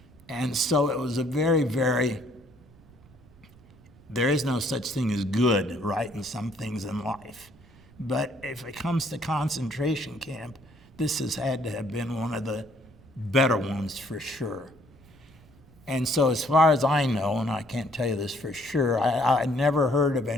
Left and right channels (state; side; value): noise; right; rumble, 25 dB below the sound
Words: And so it was a very, very, there is no such thing as good, right, in some things in life. But if it comes to concentration camp, this has had to have been one of the better ones for sure. And so as far as I know, and I can't tell you this for sure, I never heard of